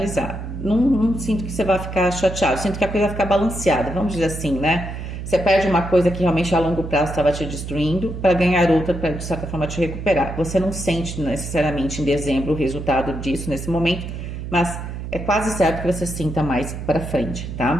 Não sinto que você vai ficar chateado, sinto que a coisa vai ficar balanceada, vamos dizer assim, né? Você perde uma coisa que realmente a longo prazo estava te destruindo para ganhar outra, para de certa forma te recuperar. Você não sente necessariamente em dezembro o resultado disso nesse momento, mas é quase certo que você sinta mais para frente,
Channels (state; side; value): noise; right; hum, 7 dB below the sound